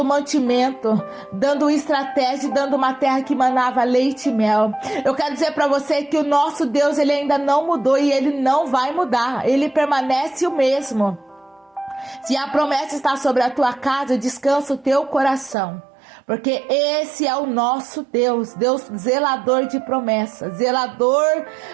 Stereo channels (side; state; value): left; drops out; at 15.6 s